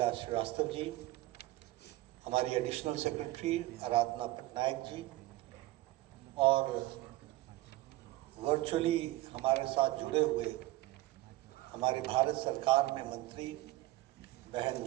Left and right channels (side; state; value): left; quieter; 17.9 dB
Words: श्रीवास्तव जी, हमारी एडिशनल सेक्रेटरी आराधना पटनायक जी और वर्चुअली हमारे साथ जुड़े हुए हमारे भारत सरकार में मंत्री